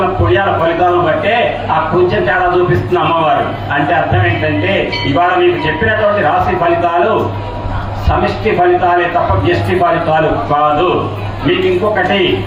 పుణ్యాల ఫలితాలను బట్టే ఆ కొంచెం తేడా చూపిస్తుంది అమ్మవారు. అంటే అర్థం ఏంటంటే, ఇవాళ మీకు చెప్పినటువంటి రాశి ఫలితాలు సమిష్టి ఫలితాలే తప్ప వ్యష్టి ఫలితాలు కాదు. మీకు ఇంకొకటి,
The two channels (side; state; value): both; identical; correlation 1.00